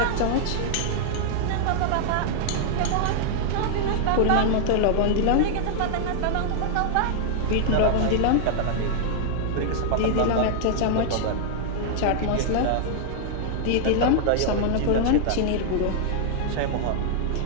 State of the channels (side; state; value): both; different; correlation -0.01